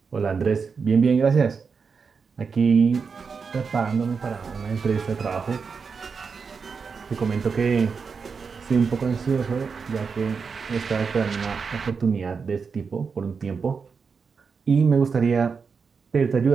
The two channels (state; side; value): quieter; left; 5.4 dB